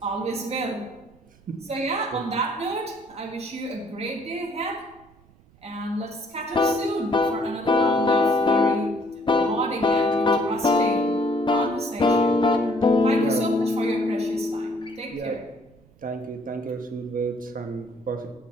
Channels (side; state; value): right; noise; rumble, 29 dB below the sound